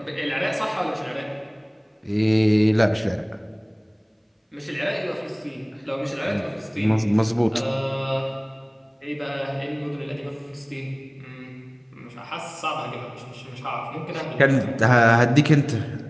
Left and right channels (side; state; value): both; identical; correlation 1.00